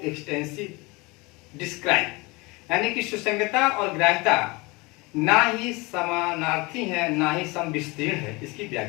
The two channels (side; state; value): right; quieter; 25.1 dB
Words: describe, यानी कि सुसंगता और ग्राह्यता ना ही समानार्थी है ना ही समविस्तीर्ण है। इसकी